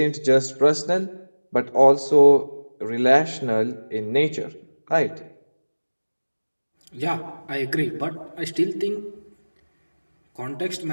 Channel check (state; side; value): inverted; both; correlation -1.00